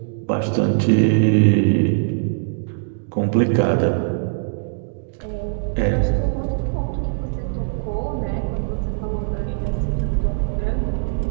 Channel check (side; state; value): left; silent; digital silence